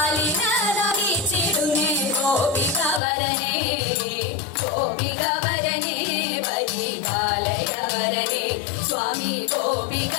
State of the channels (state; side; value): drops out; right; at 3.0 s